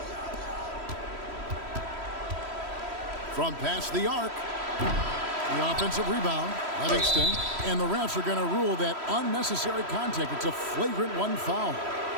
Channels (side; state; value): left; late; 3.1 ms